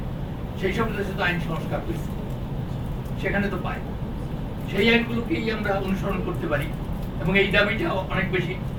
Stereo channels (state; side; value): identical; both; correlation 1.00